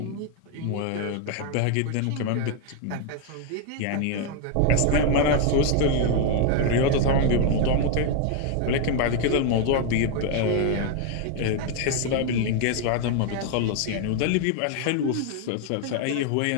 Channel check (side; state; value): both; different; correlation 0.01